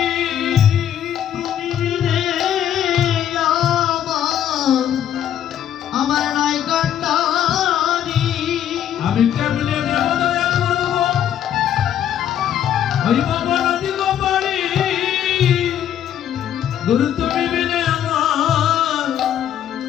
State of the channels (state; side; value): quieter; right; 10.3 dB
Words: তুমি বিনে আমার নাই কান্ডারি আমি কেমনে দেব দয়া করব ওই বাবা নদী গোপাড়ি গুরু তুমি বিনে